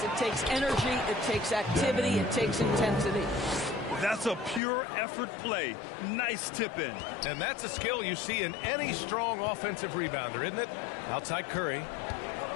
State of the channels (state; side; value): drops out; right; at 4.6 s